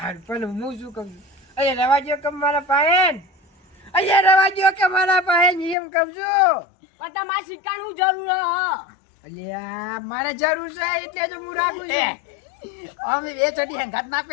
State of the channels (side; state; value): right; drops out; at 5.8 s